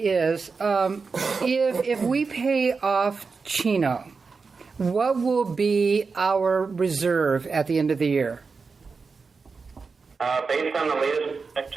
if we pay off Chino, what will be our reserve at the end of the year? Based on the latest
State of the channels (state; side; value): quieter; left; 4.7 dB